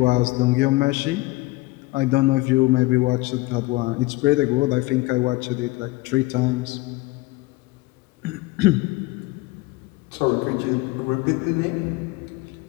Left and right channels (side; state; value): right; quieter; 21.4 dB